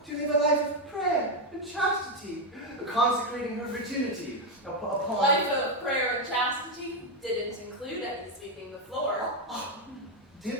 to live a life of prayer and chastity, consecrating her virginity upon... Life of prayer and chastity didn't include any sweeping the floor.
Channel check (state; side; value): normal; both; correlation 0.05